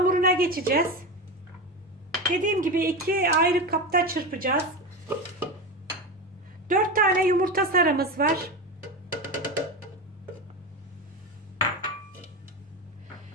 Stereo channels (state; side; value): normal; both; correlation 0.20